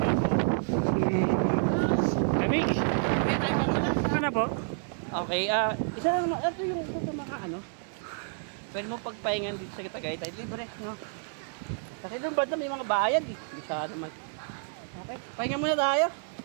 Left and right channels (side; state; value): left; silent; 58 dB below the other